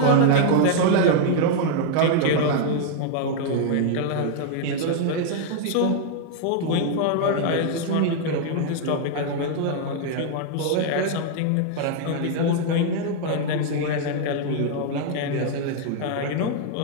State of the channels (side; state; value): both; different; correlation -0.01